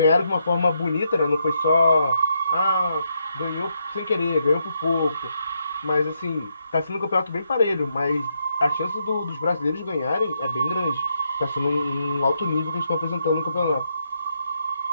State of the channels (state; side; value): inverted; both; correlation -0.79